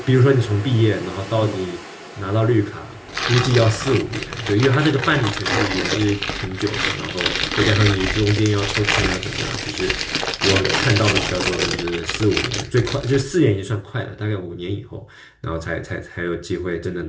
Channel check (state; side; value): identical; both; correlation 1.00